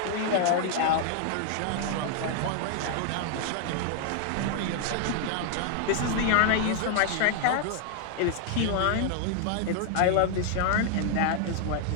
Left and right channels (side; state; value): both; different; correlation 0.00